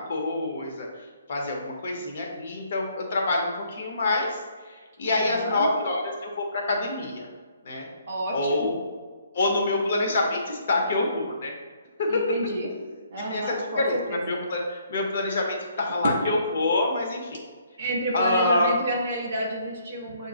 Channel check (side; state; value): both; inverted; correlation -0.66